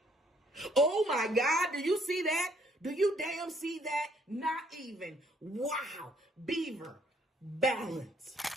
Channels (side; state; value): both; normal; correlation 0.65